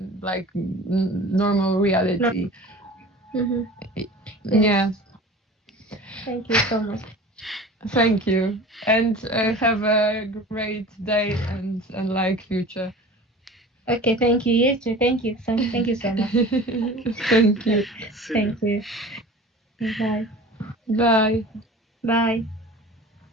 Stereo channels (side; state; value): both; normal; correlation 0.40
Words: like normal reality. Yeah. Thank you so much. Thank you, and have a great day and like future. Okay, thank you. You too. Thank you. Thank you so much. Thank you. Thank you. Bye. Bye. Bye.